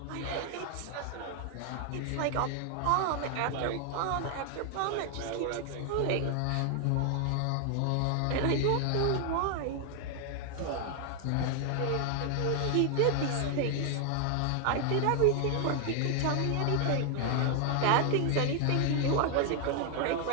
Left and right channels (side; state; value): both; different; correlation 0.00